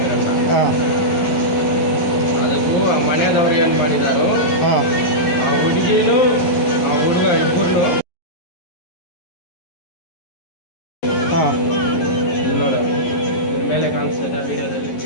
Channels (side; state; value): right; late; 11 ms